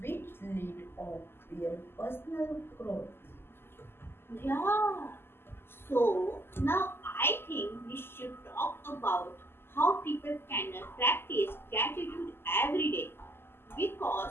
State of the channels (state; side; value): late; right; 0.11 ms